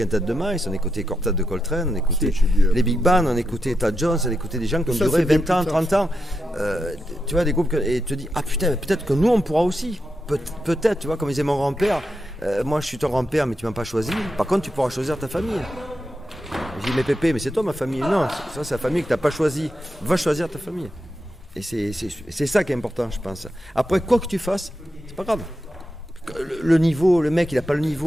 de Miles, on écoutait Quartet de Coltrane, on écoutait les Big Band, on écoutait Tad Jones, on écoutait des gens qui ont duré 20 ans, 30 ans. Tu vois, des groupes, et tu te dis, ah putain, peut-être que nous on pourra aussi. Peut-être, tu vois, comme disait mon grand-père, moi je suis ton grand-père, mais tu m'as pas choisi. Par contre, tu pourras choisir ta famille. Je dis, mais Pépé, mais c'est toi ma famille. Non, ça c'est la famille que tu n'as pas choisie. Va choisir ta famille. Et c'est ça qui est important, je pense. Après, quoi que tu fasses, c'est pas grave. Le niveau, le mec il a pas le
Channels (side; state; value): both; normal; correlation 0.87